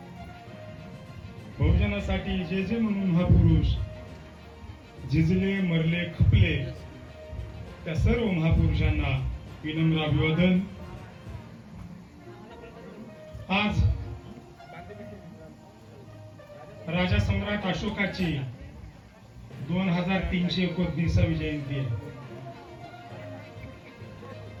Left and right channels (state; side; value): identical; both; correlation 1.00